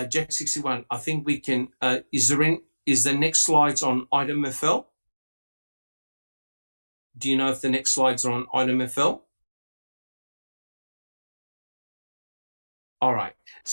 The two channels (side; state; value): both; inverted; correlation -1.00